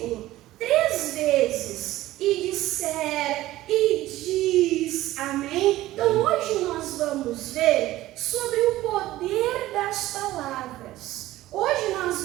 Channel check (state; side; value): quieter; left; 15.9 dB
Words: 3 vezes e disser, e diz, amém? Então hoje nós vamos ver sobre o poder das palavras. Hoje